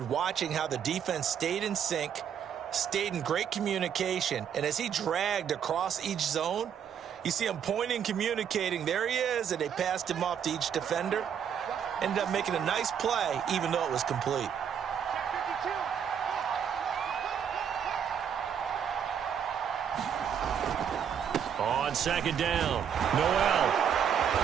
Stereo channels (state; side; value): quieter; left; 8.3 dB